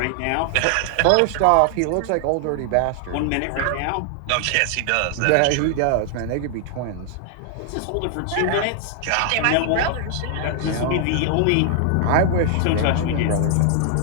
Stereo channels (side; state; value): both; different; correlation 0.00